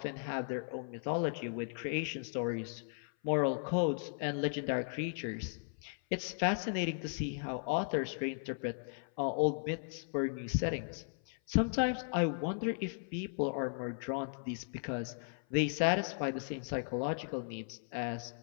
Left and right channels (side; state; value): right; silent; 53 dB below the other